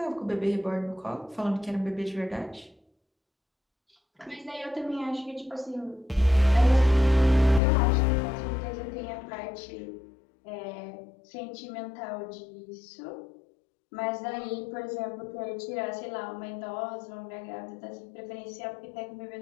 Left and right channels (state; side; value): drops out; right; at 7.6 s